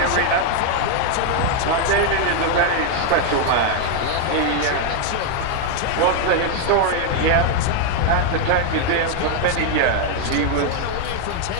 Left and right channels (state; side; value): different; both; correlation 0.00